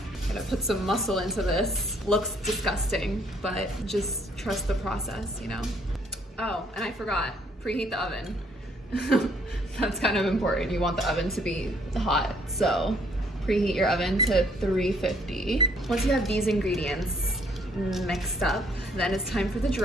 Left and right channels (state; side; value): normal; both; correlation 0.64